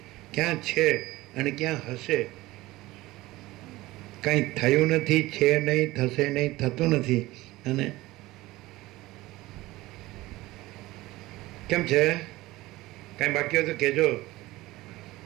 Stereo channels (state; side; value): quieter; left; 18.6 dB